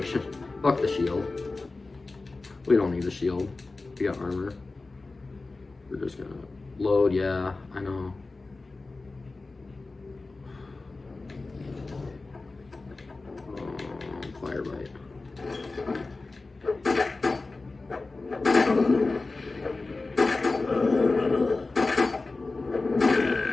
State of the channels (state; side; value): quieter; right; 3.5 dB